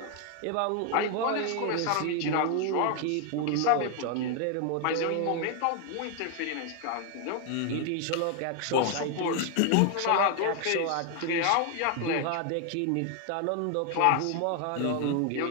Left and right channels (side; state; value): both; different; correlation 0.00